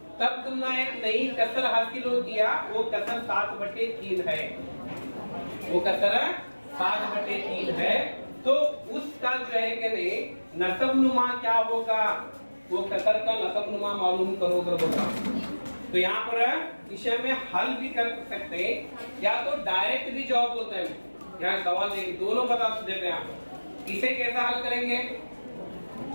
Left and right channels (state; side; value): inverted; both; correlation -1.00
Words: तब तुमने एक नई कसर हासिल हो गया। वो कसर 7/3 है, वो कसर 7/3 है। तो उसका जो है कि नहीं नसब नुमा क्या होगा? वो कसर का नसब नुमा मालूम करो कर बोलता। तो यहाँ पर इसे में हल भी कर सकते हैं, या तो डायरेक्ट भी जवाब बोलते हैं। यहाँ सवाल देखिए, दोनों बता देते हैं आप। इसे कैसा हल करेंगे?